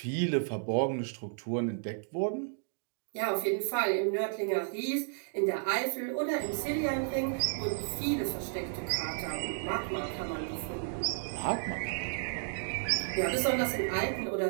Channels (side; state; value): left; silent; digital silence